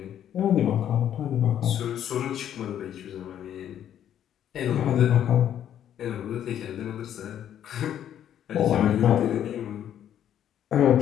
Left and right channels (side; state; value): right; quieter; 10.3 dB